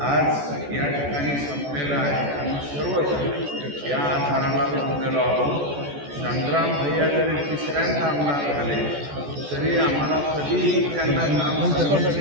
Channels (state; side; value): late; left; 14 ms